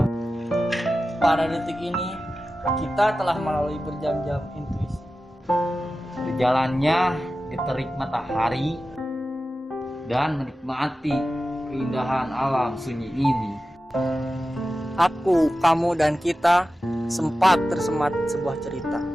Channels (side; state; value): both; normal; correlation 0.94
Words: Pada detik ini, kita telah melalui berjam-jam intuisi. Berjalannya di terik matahari dan menikmati keindahan alam sunyi ini. Aku, kamu, dan kita sempat tersemat sebuah cerita